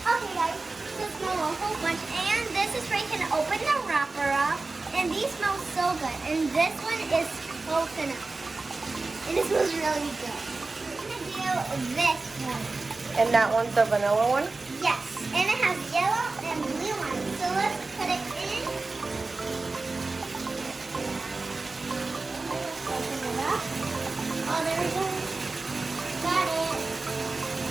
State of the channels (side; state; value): left; quieter; 3.6 dB